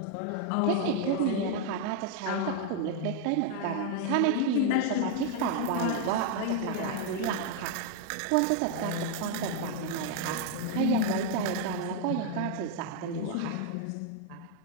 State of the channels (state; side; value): different; both; correlation 0.00